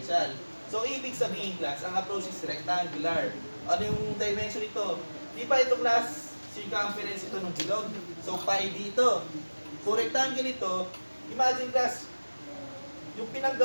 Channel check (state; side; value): inverted; both; correlation -1.00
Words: So, ibig sabihin, class, ang approach is rectangular. Ano yung dimension nito? Di ba ito, class, circumference ito ng bilog? So, pi dito. Kung rectangle ito, imagine, class, yung